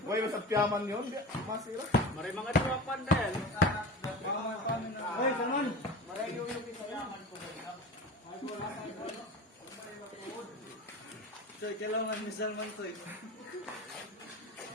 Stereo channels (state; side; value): normal; both; correlation 0.31